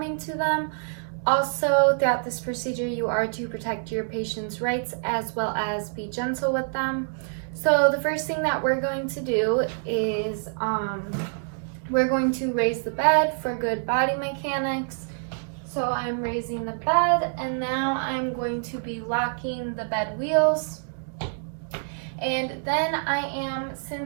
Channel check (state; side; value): silent; left; digital silence